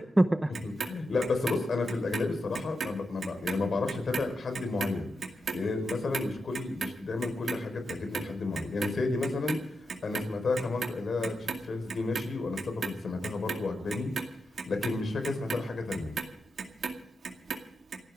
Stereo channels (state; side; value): normal; both; correlation 0.87